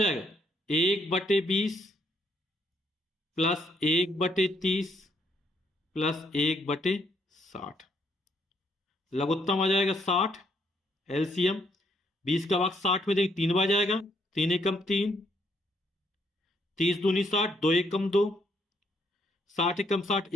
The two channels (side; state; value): both; normal; correlation 0.71